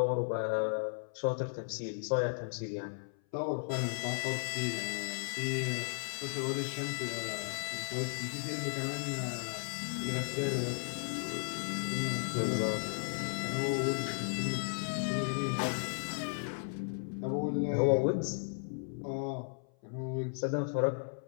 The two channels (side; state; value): right; silent; 54 dB below the other